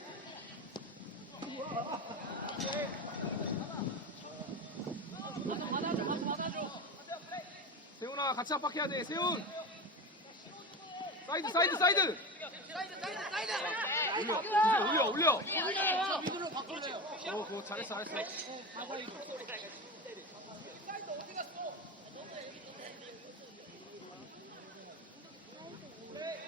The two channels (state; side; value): normal; both; correlation 0.24